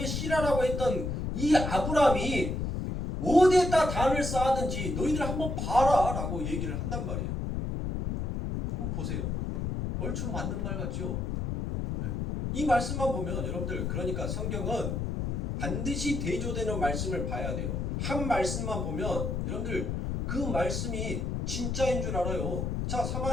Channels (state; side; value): noise; left; rumble, 2 dB below the sound